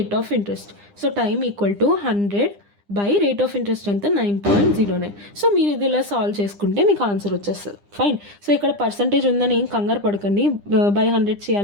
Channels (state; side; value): late; left; 9.9 ms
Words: of interest. So time equal to 100 by rate of interest ఎంత 9.09. So మీరు ఇది ఇలా solve చేసుకుంటే మీకు ఆన్సర్ వచ్చేస్తుంది. ఫైన్. సో ఇక్కడ పర్సంటేజ్ ఉందని ఏం కంగారు పడకండి, బై 100